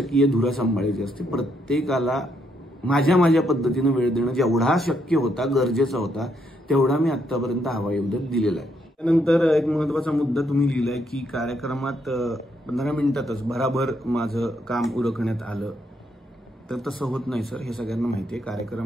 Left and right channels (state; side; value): normal; both; correlation 0.75